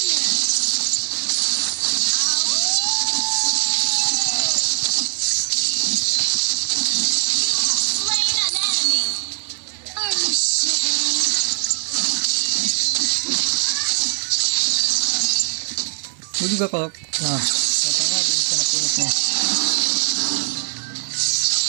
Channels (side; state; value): left; silent; digital silence